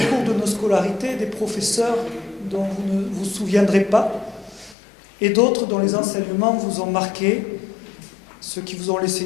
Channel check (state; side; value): drops out; right; at 4.8 s